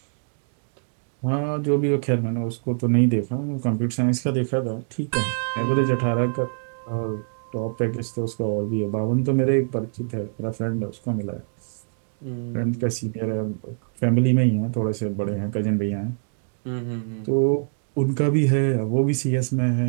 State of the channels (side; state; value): left; silent; digital silence